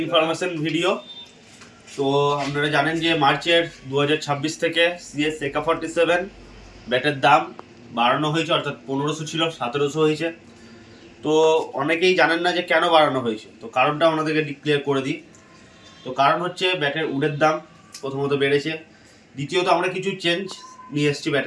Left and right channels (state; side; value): identical; both; correlation 1.00